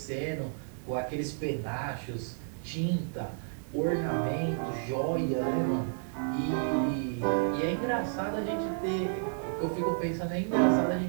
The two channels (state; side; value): silent; left; digital silence